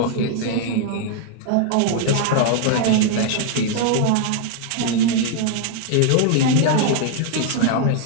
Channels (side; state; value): both; different; correlation 0.00